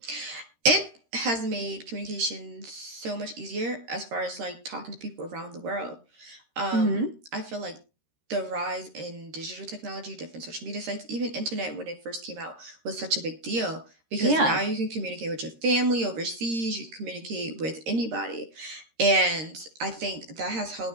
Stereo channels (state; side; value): late; left; 13 ms